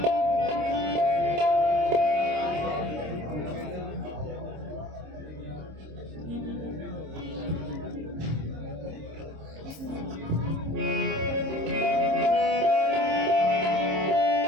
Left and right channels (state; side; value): late; left; 26 ms